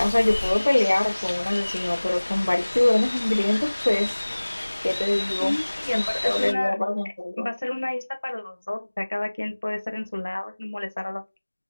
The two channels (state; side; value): inverted; both; correlation -1.00